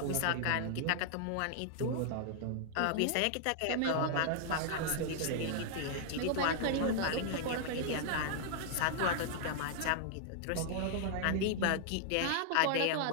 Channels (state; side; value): different; both; correlation -0.01